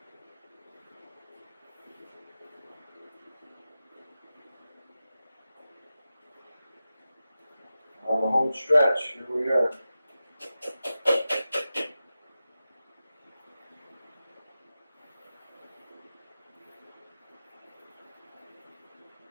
On the home stretch, here we are.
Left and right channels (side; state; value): both; inverted; correlation -0.93